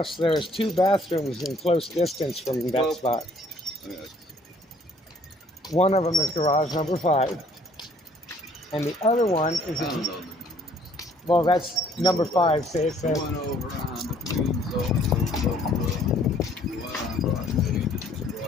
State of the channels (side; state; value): both; normal; correlation 0.60